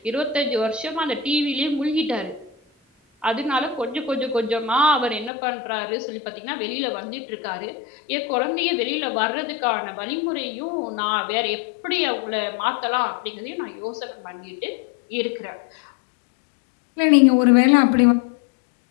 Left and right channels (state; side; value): drops out; right; at 5.3 s